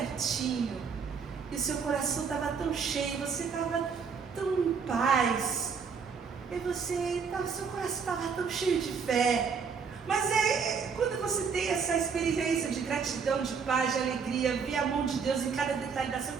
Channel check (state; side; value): quieter; left; 5.9 dB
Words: e o seu coração estava tão cheio, você estava tão em paz, e seu coração estava tão cheio de fé. Mas quando você tem essa experiência de gratidão, de paz, de alegria, ver a mão de Deus em cada detalhe da sua